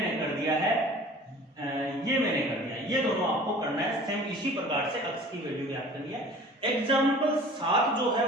कर दिया है, ये मैंने कर दिया, ये दोनों आपको करना है सेम इसी प्रकार से अक्ष की वैल्यू ज्ञात करनी है। एग्जाम्पल 7 जो है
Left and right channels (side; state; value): both; normal; correlation 0.45